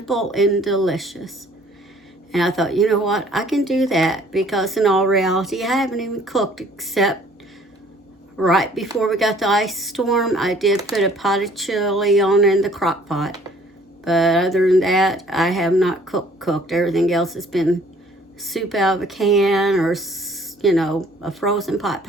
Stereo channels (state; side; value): normal; both; correlation 0.57